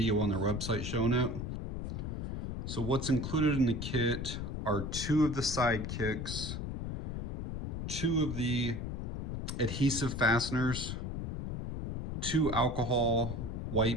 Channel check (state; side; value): noise; left; rumble, 3 dB below the sound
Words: on their website showing it. So what's included in the kit are two of the sidekicks, two of the adhesive fasteners, two alcohol